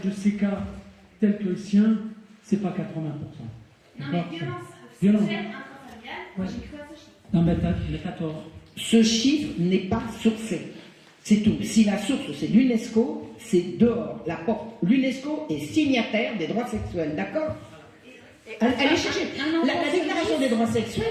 de ces cas, tels que le sien, c'est pas 80%. Non, mais violence sexuelle intrafamiliale, ouais. J'ai cru à ce chiffre. Non, mais t'as tort. Ce chiffre n'est pas sourcé. C'est tout. Si la source, c'est l'UNESCO, c'est dehors. La porte. L'UNESCO est signataire des droits sexuels. D'accord? Allez chercher. La déclaration des droits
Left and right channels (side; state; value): both; identical; correlation 1.00